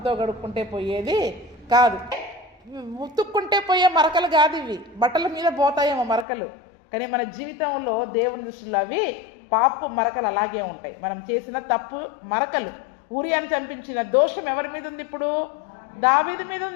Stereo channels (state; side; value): drops out; right; at 6.2 s